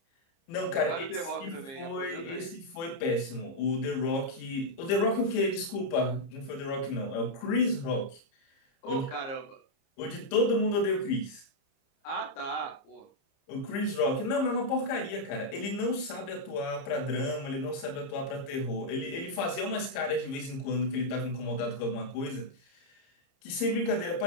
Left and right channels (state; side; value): late; right; 30 ms